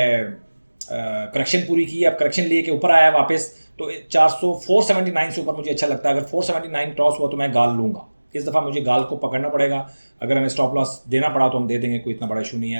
करेक्शन पूरी की है, अब करेक्शन लिए के ऊपर आया है वापस। तो 479 से ऊपर मुझे अच्छा लगता है। अगर 479 क्रॉस हुआ तो मैं गाल लूँगा। इस दफ़ा मुझे गाल को पकड़ना पड़ेगा। अगर हमें स्टॉप लॉस देना पड़ा तो हम दे देंगे, कोई इतना बड़ा इशू नहीं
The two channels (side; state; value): both; inverted; correlation -1.00